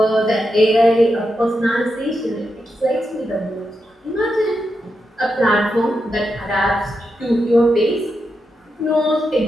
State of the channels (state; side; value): normal; both; correlation 0.86